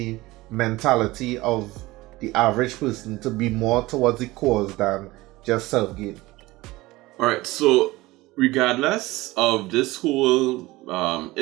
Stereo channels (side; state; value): left; quieter; 19.7 dB